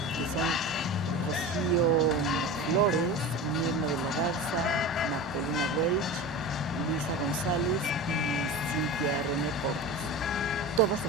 que son Rocío Flores, Mirna de la Garza, Magdalena Welch, Luisa González y Cintia René Portes. Todas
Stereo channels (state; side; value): normal; both; correlation 0.30